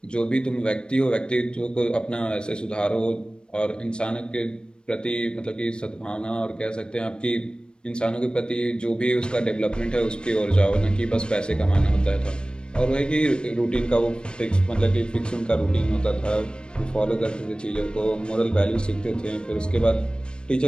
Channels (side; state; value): right; late; 0.053 ms